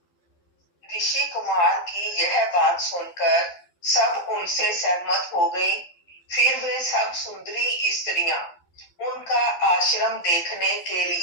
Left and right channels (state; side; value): late; right; 12 ms